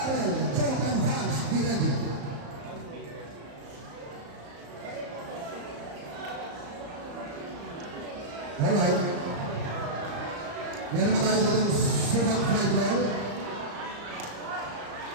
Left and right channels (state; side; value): late; left; 34 ms